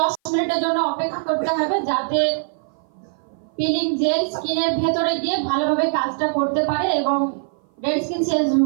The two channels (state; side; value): silent; left; 57 dB below the other